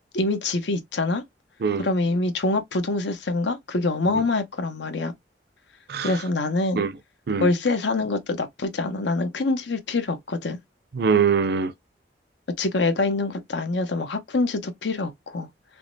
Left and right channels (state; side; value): normal; both; correlation 0.24